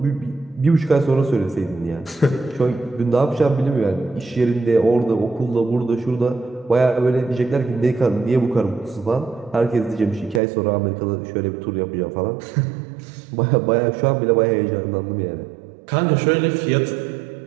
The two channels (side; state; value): left; drops out; at 10.4 s